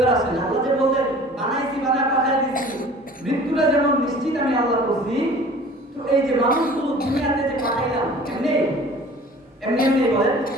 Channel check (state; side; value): normal; both; correlation 0.46